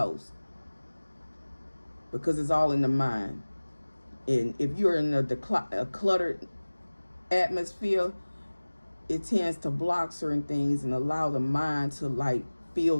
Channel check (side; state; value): both; inverted; correlation -1.00